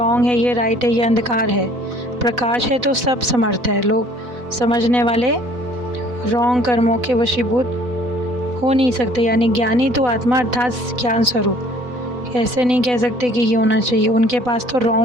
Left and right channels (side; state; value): left; late; 4.0 ms